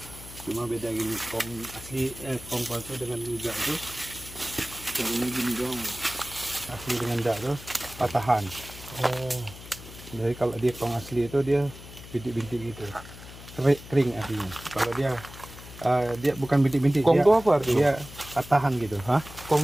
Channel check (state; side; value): noise; left; hum, 16 dB below the sound